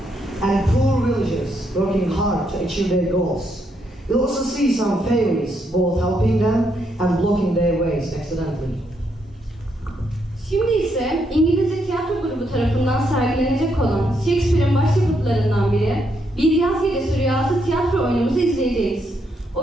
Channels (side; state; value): both; normal; correlation 0.77